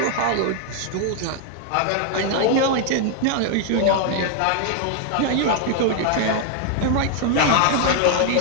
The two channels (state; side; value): different; both; correlation 0.00